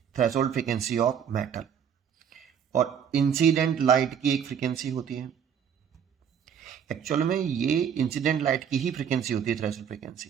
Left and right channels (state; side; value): quieter; left; 8.1 dB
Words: थ्रेशोल्ड फ्रीक्वेंसी ऑफ मेटल, और इंसिडेंट लाइट की एक फ्रीक्वेंसी होती है. एक्चुअल में ये इंसिडेंट लाइट की ही फ्रीक्वेंसी होती है थ्रेशोल्ड